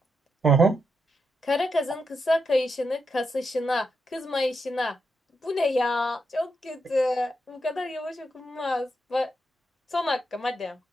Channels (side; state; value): both; normal; correlation 0.83